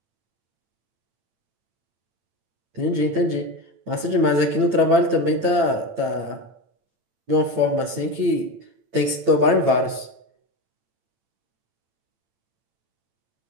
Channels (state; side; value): late; left; 8.9 ms